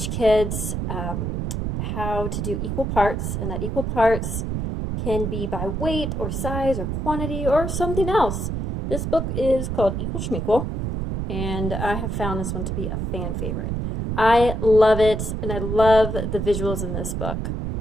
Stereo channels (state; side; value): noise; right; rumble, 2 dB below the sound